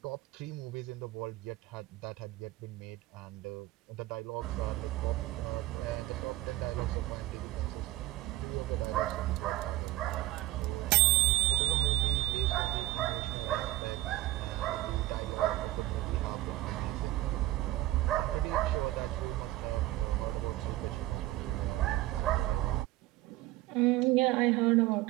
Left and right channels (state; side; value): quieter; left; 17.3 dB